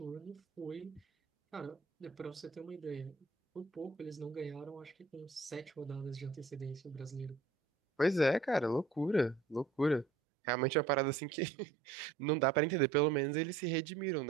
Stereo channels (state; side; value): drops out; left; at 10.1 s